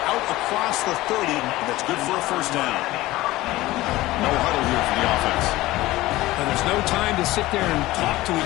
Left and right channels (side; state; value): right; quieter; 17.8 dB